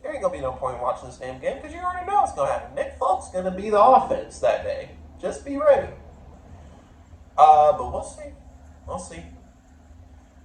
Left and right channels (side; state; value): both; identical; correlation 1.00